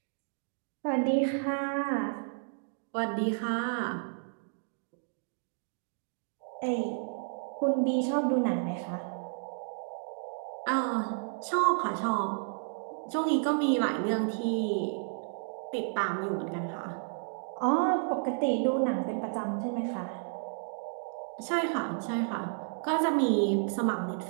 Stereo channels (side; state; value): left; silent; digital silence